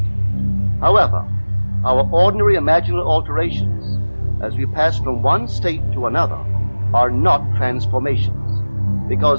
However, our ordinary imaginal alterations, as we pass from one state to another, are not transformations,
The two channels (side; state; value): both; inverted; correlation -1.00